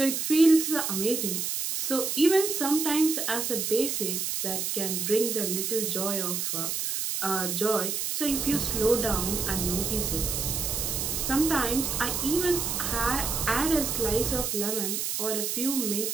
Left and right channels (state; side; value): noise; right; hiss, 1 dB below the sound